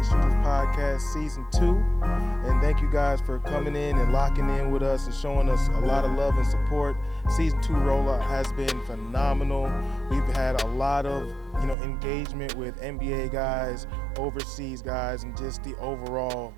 Shooters Podcast Season 2. And thank you guys for coming in and locking in with us and showing us a lot of love and support. Season 2 rollout has been phenomenal. We've had a lot of engagement with NBA guys, overseas guys, and just the overall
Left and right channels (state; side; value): drops out; left; at 11.8 s